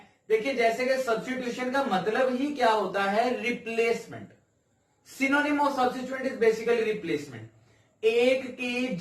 देखिए जैसे कि सब्स्टिट्यूशन का मतलब ही क्या होता है, replacement. Synonym of substituent is basically replacement, एक की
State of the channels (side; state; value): both; identical; correlation 1.00